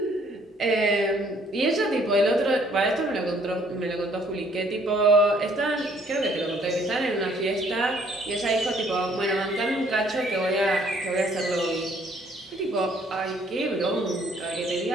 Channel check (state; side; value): normal; both; correlation 0.62